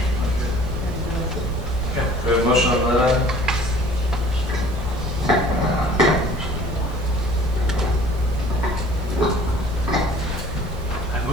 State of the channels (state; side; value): normal; both; correlation 0.50